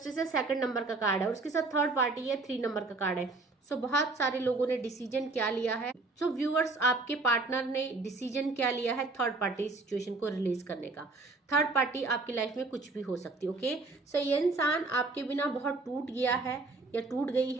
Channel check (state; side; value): quieter; left; 3.4 dB